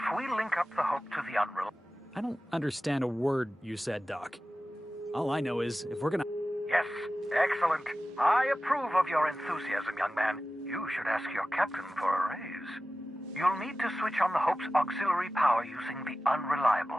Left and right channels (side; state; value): both; normal; correlation 0.95